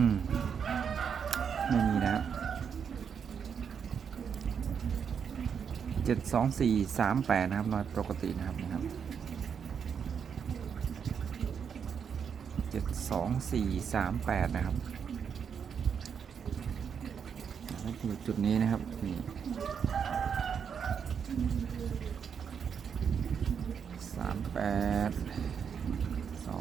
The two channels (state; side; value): quieter; left; 7.1 dB